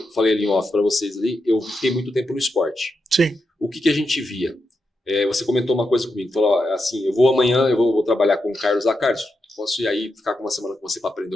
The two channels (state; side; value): normal; both; correlation 0.86